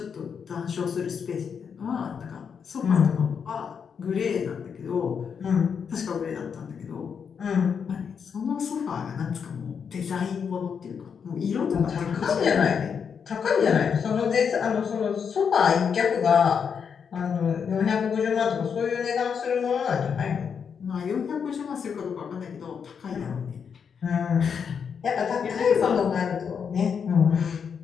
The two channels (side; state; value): right; quieter; 6.8 dB